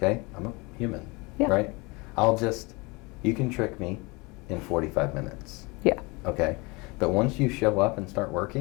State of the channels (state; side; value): quieter; right; 26.3 dB